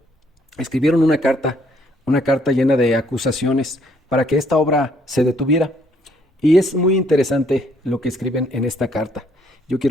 escribieron una carta llena de acusaciones para que esta obra se detuviera. Y es muy interesante lo que escriben en esta carta. Yo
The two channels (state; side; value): normal; both; correlation 0.67